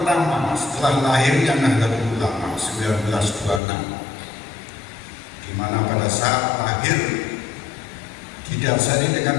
setelah lahirnya Nahdlatul Ulama 1926, di mana pada saat lahir didasari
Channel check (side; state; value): right; drops out; at 3.6 s